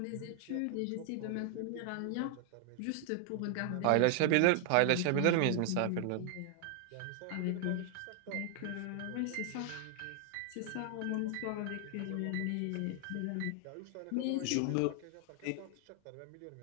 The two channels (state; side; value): different; both; correlation 0.00